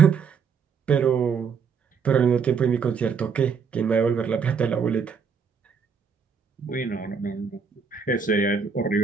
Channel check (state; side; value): quieter; left; 6.1 dB